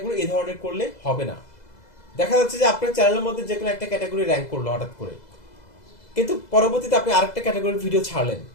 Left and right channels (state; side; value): late; right; 2.0 ms